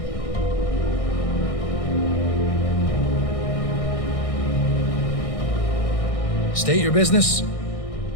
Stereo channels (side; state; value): right; late; 1.6 ms